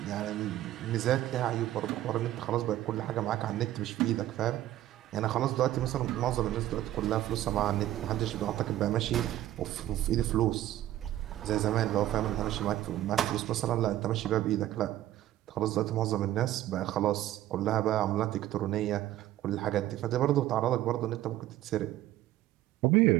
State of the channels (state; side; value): quieter; left; 13.8 dB